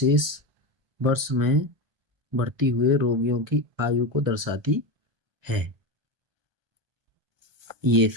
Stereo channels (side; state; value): left; late; 1.3 ms